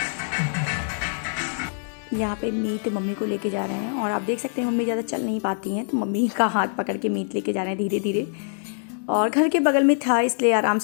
यहाँ पे मीत मम्मी को लेके जा रहे हैं और आप देख सकते हैं मम्मी ज़्यादा चल नहीं पाती हैं, तो मम्मी का हाथ पकड़ के मीत लेके जा रहे हैं धीरे धीरे। और घर के बगल में था इसलिए आराम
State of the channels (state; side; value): silent; right; 61 dB below the other